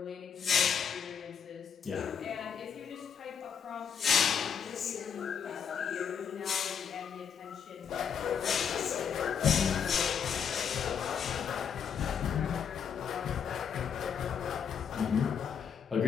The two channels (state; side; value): quieter; right; 7.4 dB